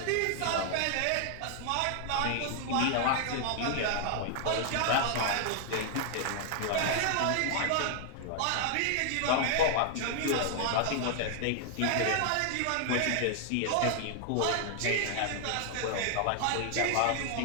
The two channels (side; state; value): both; different; correlation 0.00